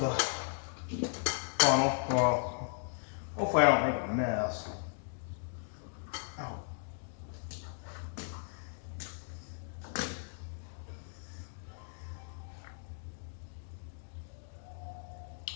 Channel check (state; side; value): silent; right; digital silence